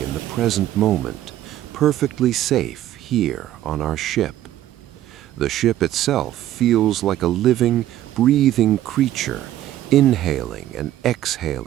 in the present moment, perfectly safe here on our ship. The ship itself feels like a living, breathing creature, inhaling and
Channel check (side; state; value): left; quieter; 13.1 dB